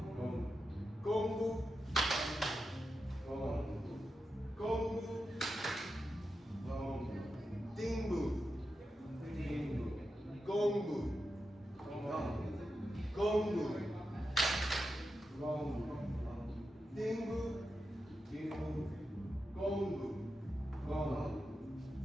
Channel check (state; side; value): normal; both; correlation 0.89